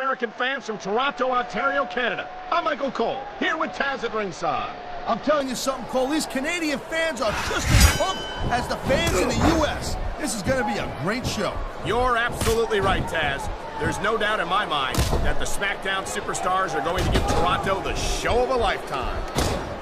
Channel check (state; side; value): identical; both; correlation 1.00